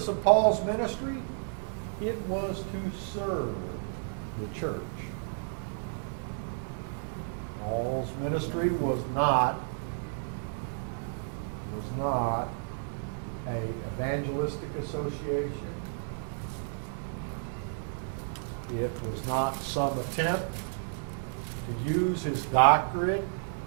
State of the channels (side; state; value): left; silent; digital silence